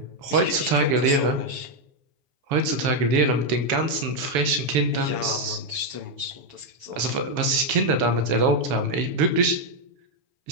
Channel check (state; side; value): late; left; 7.1 ms